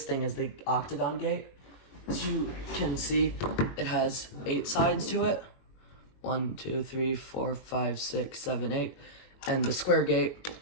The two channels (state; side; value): late; right; 22 ms